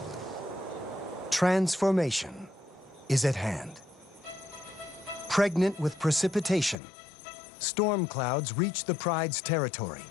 Transformation is at hand. Pregnant with precipitation, storm clouds reach the pride's territory.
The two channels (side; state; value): right; drops out; at 6.8 s